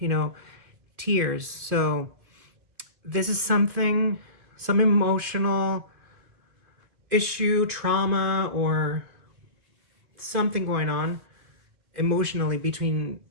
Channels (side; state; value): left; late; 2.4 ms